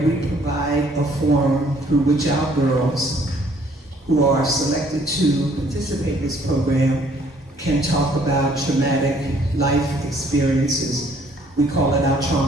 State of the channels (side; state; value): both; normal; correlation 0.61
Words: we provide a forum through which our girls who are selected to participate in this program can talk about traumatic life experiences. We call it our